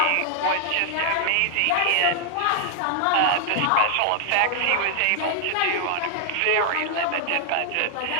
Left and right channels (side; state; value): both; different; correlation 0.00